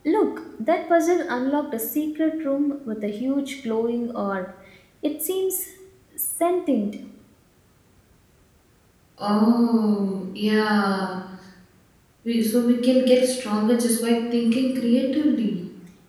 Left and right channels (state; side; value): identical; both; correlation 1.00